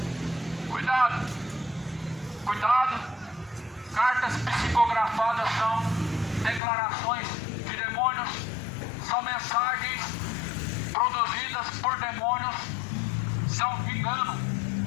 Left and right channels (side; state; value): right; drops out; at 6.6 s